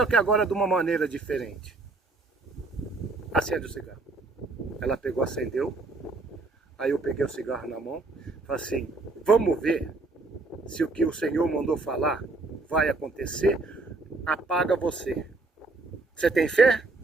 que agora de uma maneira diferente. Acende o cigarro. Ela pegou, acendeu. Aí eu peguei o cigarro na mão. Falei assim, vamos ver se o que o Senhor mandou falar vai acontecer. Apaga você. Você tem fé?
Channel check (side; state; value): left; quieter; 3.4 dB